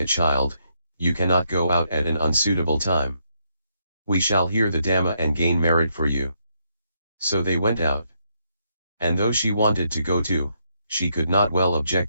child, you cannot go out at an unsuitable time." We shall hear the Dhamma and gain merit for you. So they went out. And though she wanted to go too, she could not well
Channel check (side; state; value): both; inverted; correlation -0.76